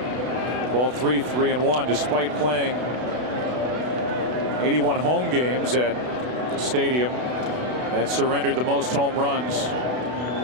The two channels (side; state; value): left; late; 32 ms